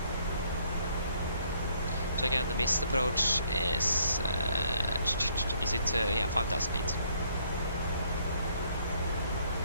So again, the missed approach is it yeah, 5,000 feet.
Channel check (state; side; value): inverted; both; correlation -0.66